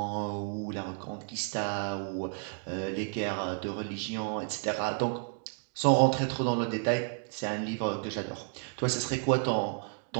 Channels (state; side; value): silent; left; 57 dB below the other